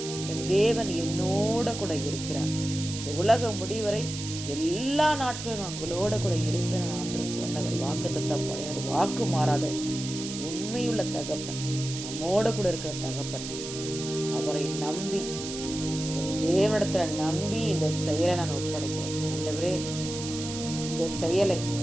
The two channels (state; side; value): noise; right; hiss, 8 dB below the sound